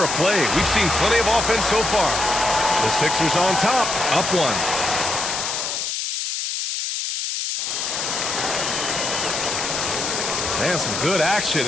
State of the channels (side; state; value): left; noise; hiss, 2 dB below the sound